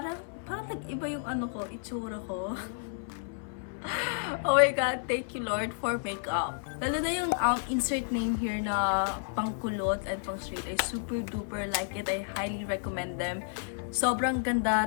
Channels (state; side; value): silent; right; 57 dB below the other